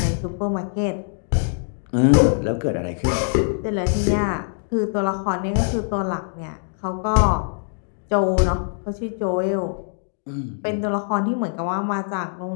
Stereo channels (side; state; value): right; silent; digital silence